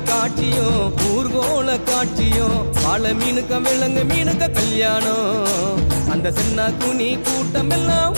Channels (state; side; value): inverted; both; correlation -1.00